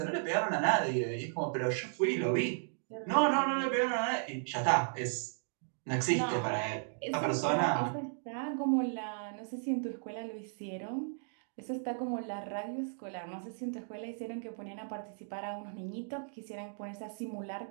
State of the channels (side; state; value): left; silent; digital silence